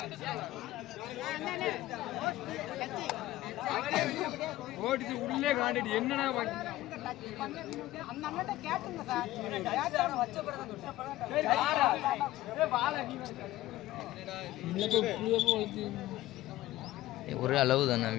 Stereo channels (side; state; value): right; quieter; 16.0 dB